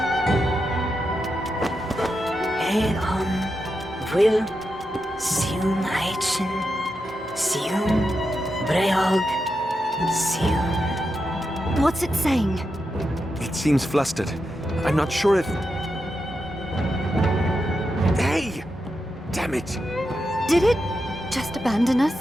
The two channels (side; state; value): both; normal; correlation 0.87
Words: Eon will Siun Aichen Siun Breog Siun. What's it saying? It seems flustered. I'm not sure if... Hey! Damn it! Did it just abandon us?